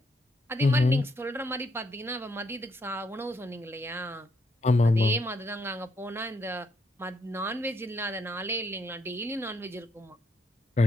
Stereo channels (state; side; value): normal; both; correlation 0.75